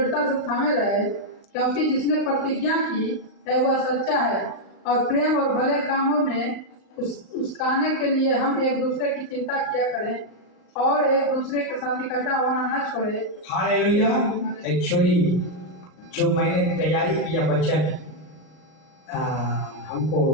से थामे रहे, क्योंकि जिसने प्रतिज्ञा की है वह सच्चा है, और प्रेम और भले कामों में उसकाने के लिए हम एक दूसरे की चिंता किया करें और एक दूसरे के साथ इकट्ठा होना न छोड़े। हालेलुया। एक्चुअली जो मैंने तैयारी किया वचन हमको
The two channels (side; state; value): right; late; 38 ms